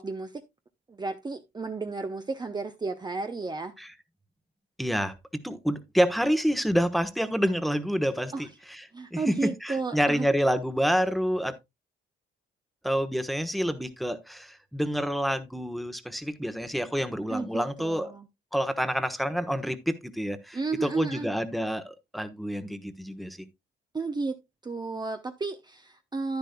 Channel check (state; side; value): normal; both; correlation 0.93